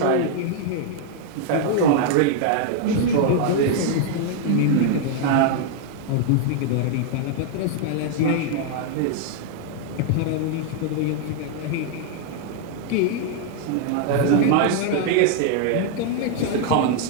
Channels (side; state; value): both; different; correlation 0.00